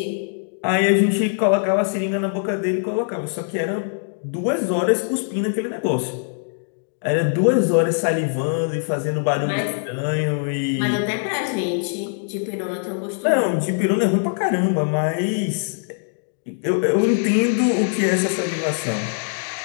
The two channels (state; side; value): silent; right; digital silence